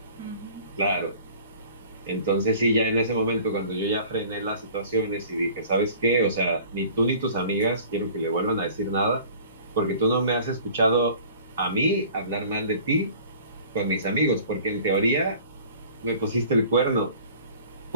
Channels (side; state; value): both; inverted; correlation -0.47